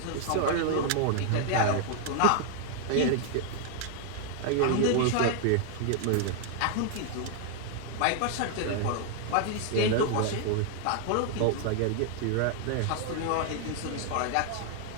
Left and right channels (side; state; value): both; different; correlation 0.00